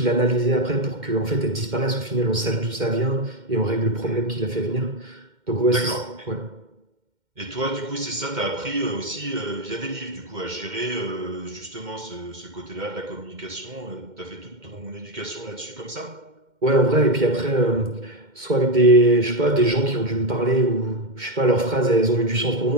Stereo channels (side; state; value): left; late; 2.1 ms